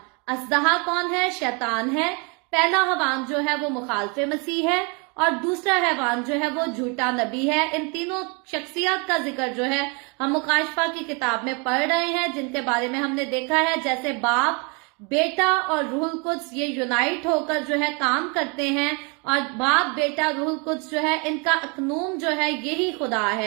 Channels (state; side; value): quieter; left; 32.6 dB